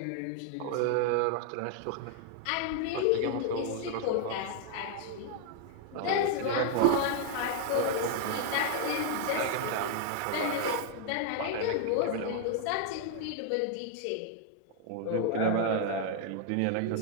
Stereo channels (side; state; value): both; different; correlation 0.00